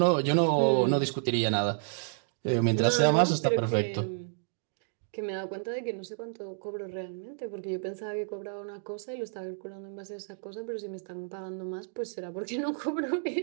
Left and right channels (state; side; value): silent; left; digital silence